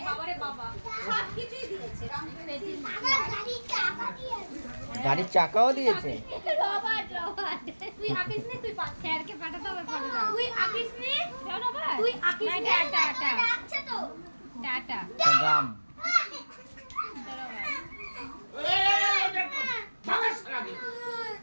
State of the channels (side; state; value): both; inverted; correlation -1.00